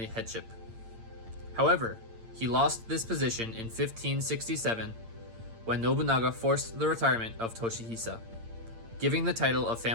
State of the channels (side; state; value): left; late; 8.8 ms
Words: headship. However, he lost this position in 1567 when Nobunaga forced the retirement of Toshihisa, giving the title of